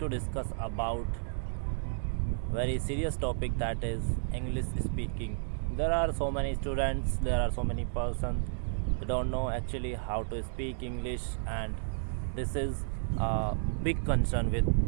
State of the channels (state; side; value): silent; left; digital silence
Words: discuss about very serious topic, that is English speaking. There are so many students, there are so many persons who don't know actually how to speak English, and this is a big concern with